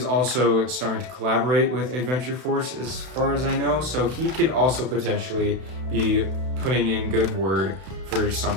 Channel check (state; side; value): late; left; 32 ms